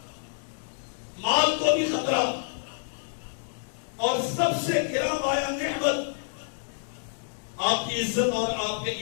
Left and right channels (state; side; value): silent; right; digital silence